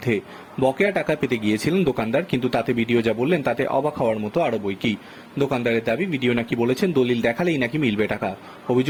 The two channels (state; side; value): identical; both; correlation 1.00